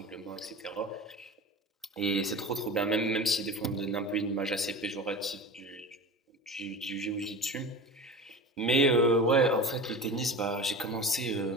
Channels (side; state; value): both; normal; correlation 0.33